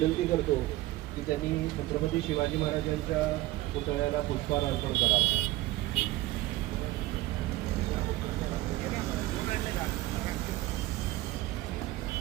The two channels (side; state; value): left; quieter; 17.6 dB